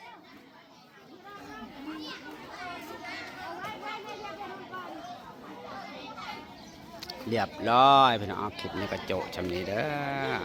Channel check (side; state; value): both; identical; correlation 1.00